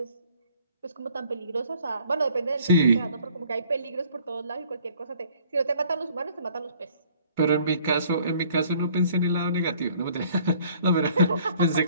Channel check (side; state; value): both; inverted; correlation -0.57